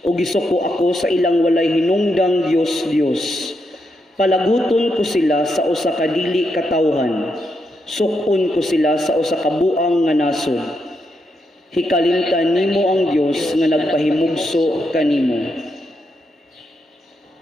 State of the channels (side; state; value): both; normal; correlation 0.82